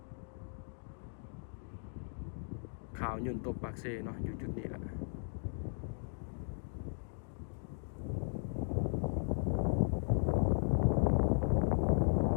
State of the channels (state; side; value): silent; right; digital silence